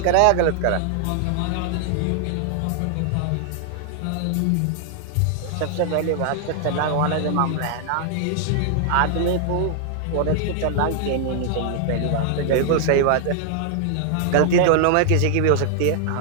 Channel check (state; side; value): different; both; correlation -0.01